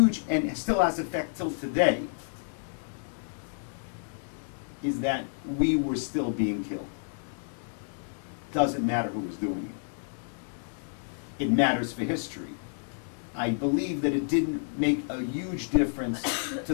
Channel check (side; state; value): right; silent; digital silence